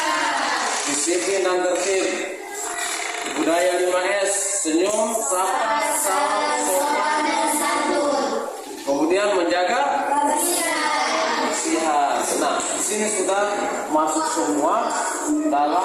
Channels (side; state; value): both; identical; correlation 1.00